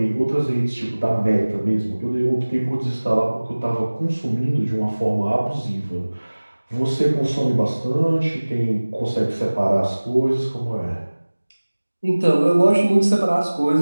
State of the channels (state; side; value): inverted; both; correlation -1.00